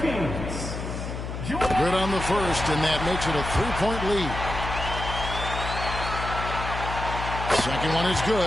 Good on the first, and that makes it a 3-point lead. Second one is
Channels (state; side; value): noise; left; hum, 6 dB below the sound